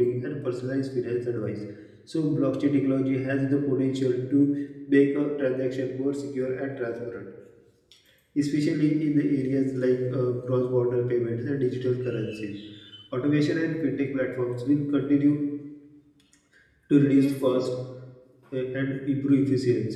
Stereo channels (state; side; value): identical; both; correlation 1.00